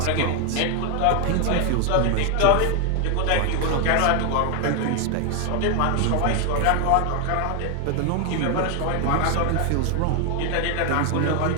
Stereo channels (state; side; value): different; both; correlation 0.01